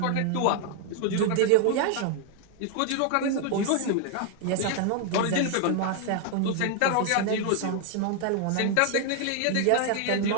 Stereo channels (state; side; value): different; both; correlation 0.00